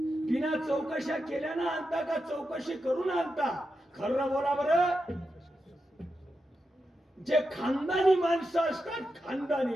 चौकशा केल्यानं आणता का चौकशी करून आणता. खरं बोला बरं. जे खानदानी माणसं असतात,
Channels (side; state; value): both; normal; correlation 0.88